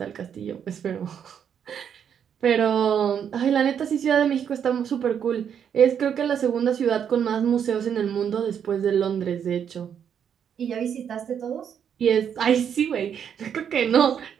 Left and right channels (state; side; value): quieter; left; 8.2 dB